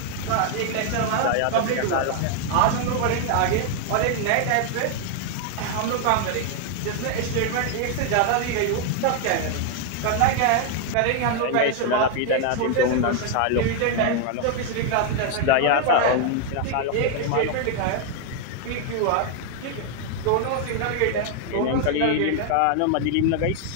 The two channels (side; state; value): both; different; correlation 0.00